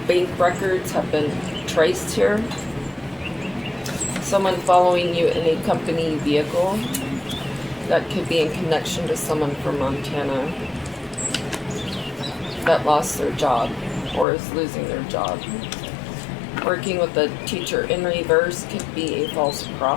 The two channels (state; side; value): drops out; right; at 14.2 s